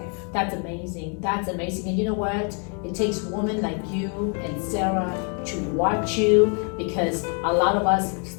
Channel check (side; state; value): right; quieter; 39.4 dB